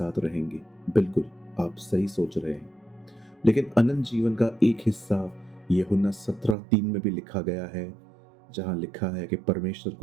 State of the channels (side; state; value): left; drops out; at 6.6 s